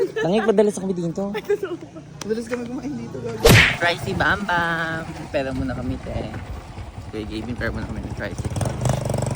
Nangig padalas kami dito. Madalas kami kumain dito, gago. Pricey Bam Bam. Pera muna kami, te. Kaya giving pera muna kami ng Pricey.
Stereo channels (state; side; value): identical; both; correlation 1.00